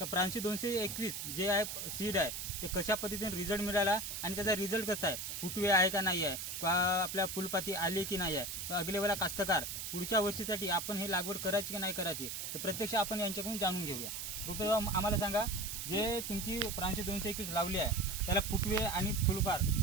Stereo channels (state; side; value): noise; right; hiss, 5 dB below the sound